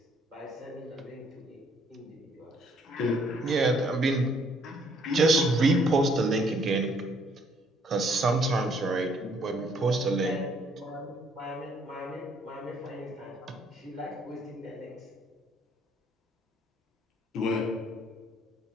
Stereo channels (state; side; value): normal; both; correlation 0.65